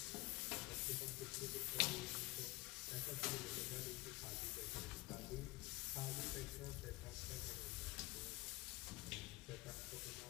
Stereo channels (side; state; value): right; quieter; 22.2 dB